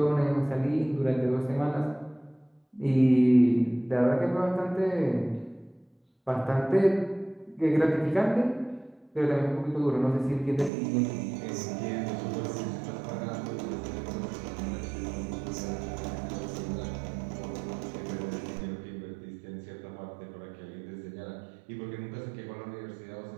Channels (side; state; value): left; drops out; at 10.7 s